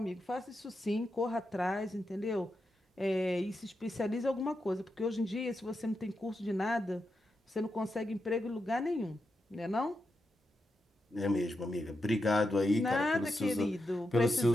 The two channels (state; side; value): normal; both; correlation 0.87